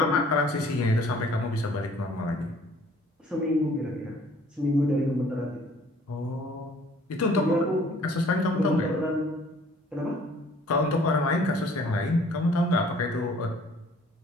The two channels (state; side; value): normal; both; correlation 0.56